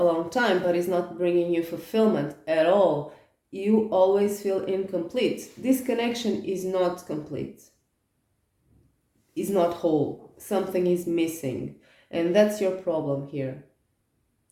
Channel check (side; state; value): both; identical; correlation 1.00